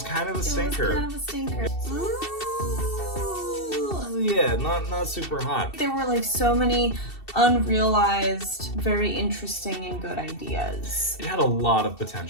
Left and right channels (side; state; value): right; late; 2.7 ms